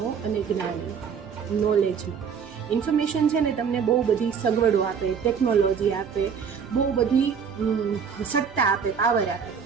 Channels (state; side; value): quieter; left; 6.8 dB